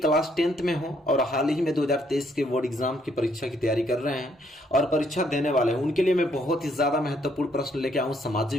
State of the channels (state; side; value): normal; both; correlation 0.70